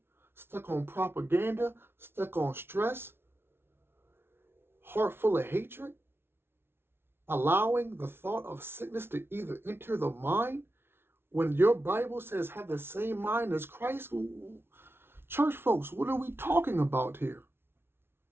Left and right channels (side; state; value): left; late; 0.11 ms